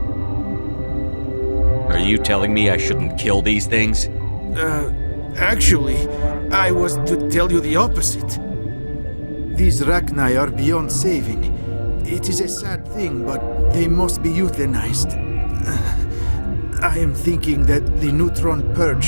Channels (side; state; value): both; inverted; correlation -1.00